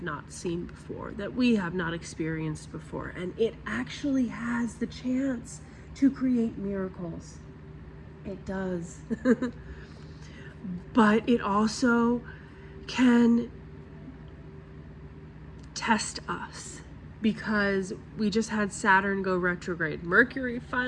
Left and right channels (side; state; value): both; identical; correlation 1.00